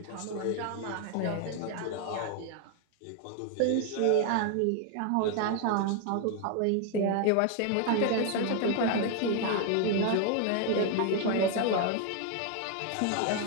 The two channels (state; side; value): different; both; correlation 0.01